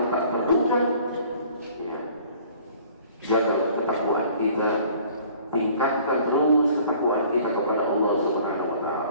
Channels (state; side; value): inverted; both; correlation -0.53